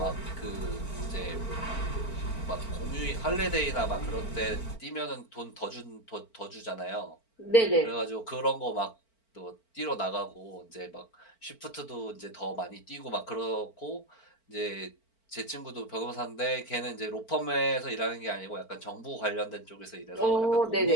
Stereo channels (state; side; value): late; right; 4.4 ms